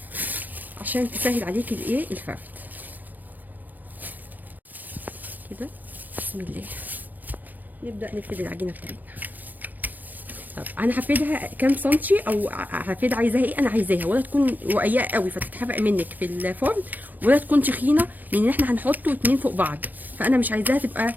عشان تسهل عليكي الايه الفرد كده. بسم الله. نبدا نفرد العجينه بتاعتنا طب انا هفردها كام سنتي، او هفرد عايزاها ايه؟ انا عايزاها ولا تكون رقيقه قوي فتتحرق منك في الفرن، ولا تكون تخينه لان احنا هنحطه اتنين فوق بعض، فانا مش عايزاها تبقى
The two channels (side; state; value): left; late; 0.084 ms